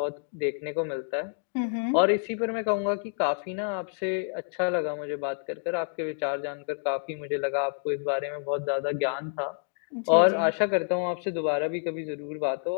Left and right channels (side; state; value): right; silent; 59 dB below the other